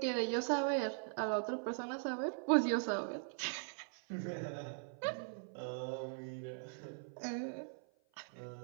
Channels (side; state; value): left; silent; 51 dB below the other